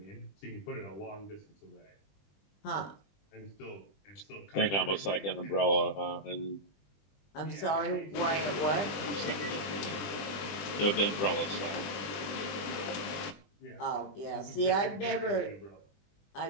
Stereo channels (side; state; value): right; late; 20 ms